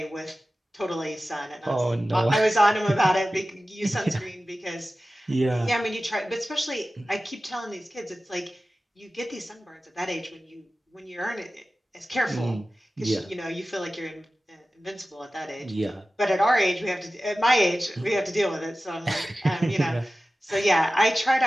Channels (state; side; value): normal; both; correlation 0.95